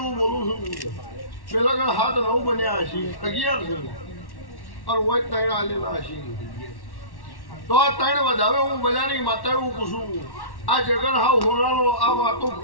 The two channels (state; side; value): late; right; 1.1 ms